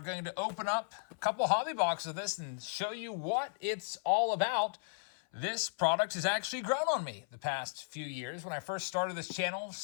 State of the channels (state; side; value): silent; right; 54 dB below the other